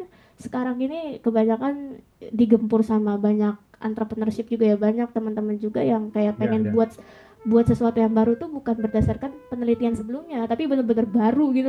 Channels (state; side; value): identical; both; correlation 1.00